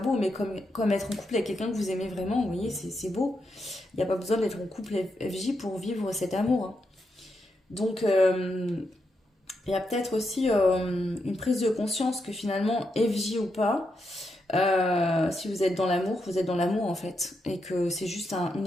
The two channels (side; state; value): both; normal; correlation 0.83